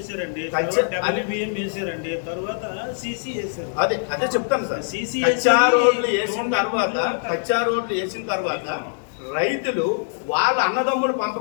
WBM వేసారండి, తర్వాత సీసీ వేసారు. అదే చెప్తాను సార్. కచ్చా రోడ్లు వేసిన తర్వాత రైతులు వాళ్ళ అన్నదమ్ముల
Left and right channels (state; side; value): silent; right; digital silence